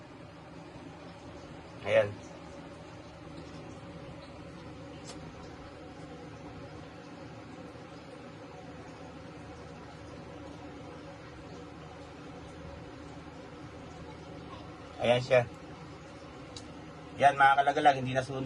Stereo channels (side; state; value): both; identical; correlation 1.00